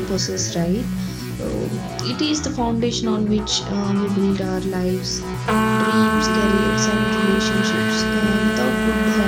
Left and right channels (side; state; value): both; identical; correlation 1.00